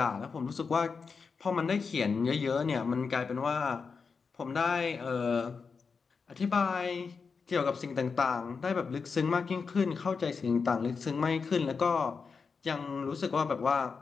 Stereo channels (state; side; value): quieter; right; 5.2 dB